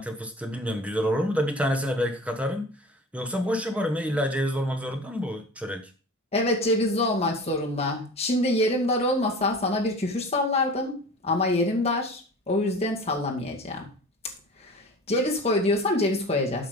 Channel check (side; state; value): both; normal; correlation 0.37